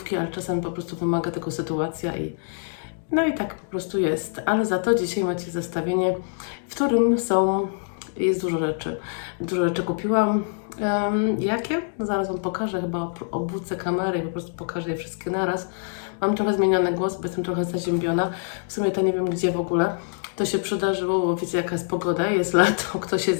ale czasami po prostu wymaga tego sytuacja i no i tak po prostu jest. Ale za to dzisiaj macie zestawienie, w którym jest dużo rzeczy. Dużo rzeczy kupiłam. Jakie? No zaraz Wam pokażę, chyba obrócę kamerę i po prostu pokażę je wszystkie naraz. Mam trochę zmieniony głos, bo jestem trochę zaziębiona. W sumie to nie wiem gdzie w ogóle. To się przydarzyło, bo wiecie jaka jest pogoda, jest lato, ktoś się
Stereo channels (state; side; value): silent; right; digital silence